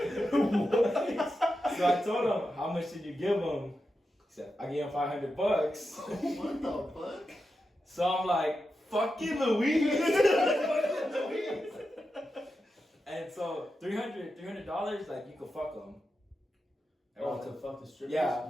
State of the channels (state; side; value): normal; both; correlation 0.89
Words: So I told him, "How much did you give him?" He said, "I gave him $500." What the fuck? So I'm like, "Fucking Louise." And so $300, like you could fuck him. Oh, to fuck the strippers? Yeah.